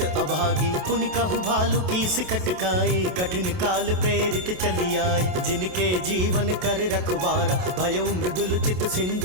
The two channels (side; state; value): left; late; 28 ms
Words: अभागी। पुन कहु भालु की सिकटकाई, कठिन काल प्रेरित चली आई। जिनके जीवन कर रखवारा, भयउ मृदुल चित